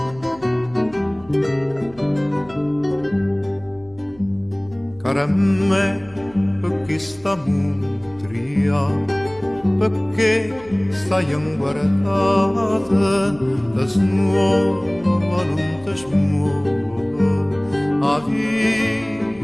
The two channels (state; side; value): noise; right; hum, 24 dB below the sound